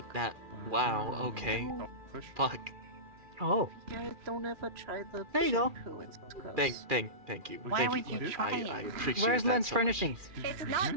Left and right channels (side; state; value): left; late; 2.4 ms